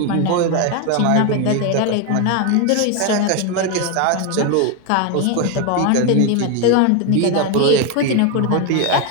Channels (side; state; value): both; different; correlation 0.02